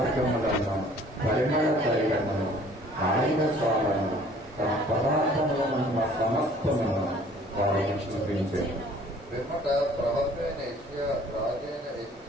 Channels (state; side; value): normal; both; correlation 0.54